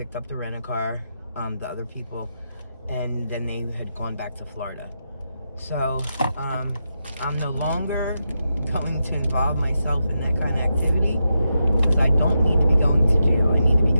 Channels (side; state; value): both; inverted; correlation -0.86